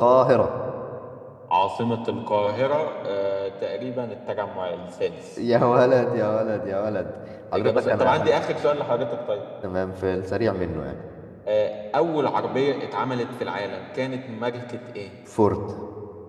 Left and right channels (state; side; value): identical; both; correlation 1.00